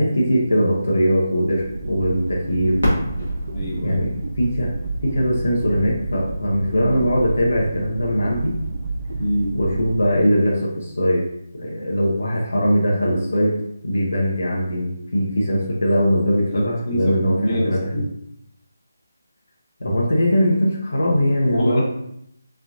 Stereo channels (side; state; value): both; inverted; correlation -0.90